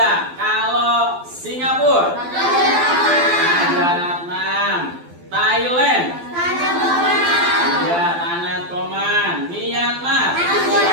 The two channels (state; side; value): late; left; 12 ms